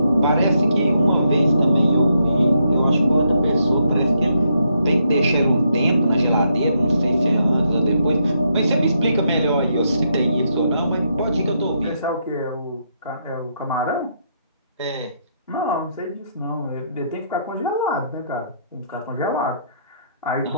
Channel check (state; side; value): inverted; both; correlation -0.77